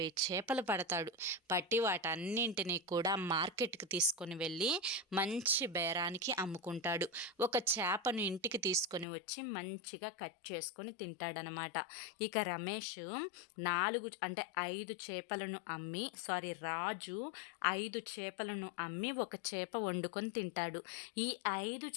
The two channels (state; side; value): drops out; right; at 9.1 s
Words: చేపలు పడతాడు. పట్టి వాటన్నింటినీ కూడా మార్కెట్కి తీసుకొని వెళ్ళి మంచి బేరానికి అమ్ముకుంటాడు. ఒక చేపను ఇంటికి తీసుకొని వచ్చి మంచిగా కట్ చేసుకొని తింటాడనమాట. ఇక రమేష్ 5 చేపలను అమ్మి, రాజు 5 చేపలను అమ్మి ఒక చేప వండుకొని తింటాడు. ఈ 5